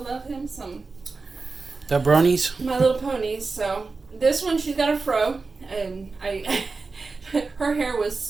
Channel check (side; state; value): left; quieter; 4.1 dB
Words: him some. The bronies? My Little Ponies. So this one, she's got a fro, and her hair was